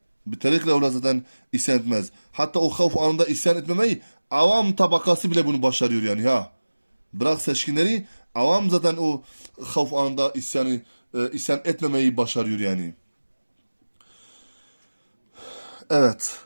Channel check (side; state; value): both; inverted; correlation -1.00